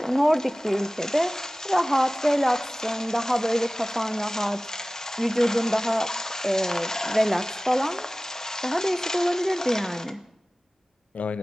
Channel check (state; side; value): normal; both; correlation 0.97